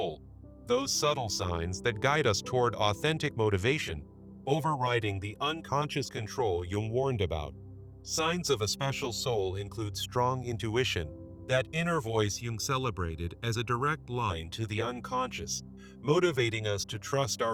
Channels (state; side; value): identical; both; correlation 1.00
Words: those subtle signs that guide us toward authentic motivation, overriding the unconscious control Jung warned about. Signs of a special soul include strong intuition, that inner voice Jung celebrated as a direct line to the unconscious, motivating us to trust